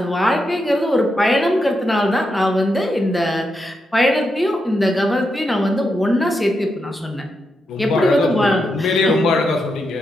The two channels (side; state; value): both; normal; correlation 0.84